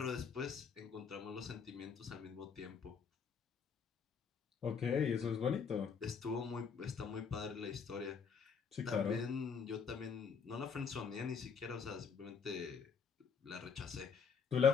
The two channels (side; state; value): right; quieter; 6.1 dB